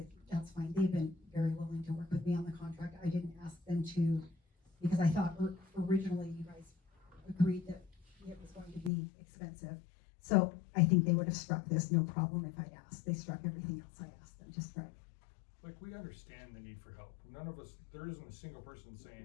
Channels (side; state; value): right; drops out; at 8.9 s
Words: that's fine. They've been very willing to work with me on the contract. I didn't ask them to, because I thought originally you guys agreed that it was going to be expensive. So I think they would have struck this, no problem if I'd asked. They struck everything else I asked them to strike. Like, we understand the need for help. None of us, there isn't a single person